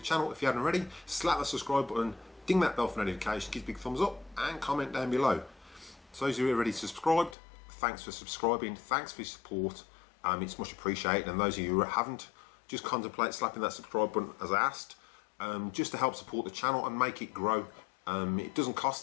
channel, if you haven't already, slap the subscribe button, ding that bell for notifications, give a big thumbs up and comment down below. So those of you who are already subscribed, thanks for subscribing, thanks for your support, it's much appreciated. And those of you who haven't, just contemplate slapping that subscribe button as I asked, just to help support the channel and make it grow. It doesn't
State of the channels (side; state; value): right; drops out; at 7.4 s